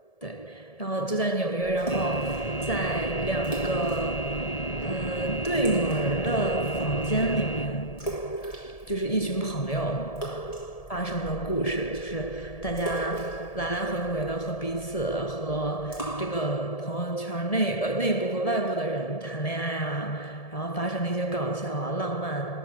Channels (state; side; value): late; right; 1.7 ms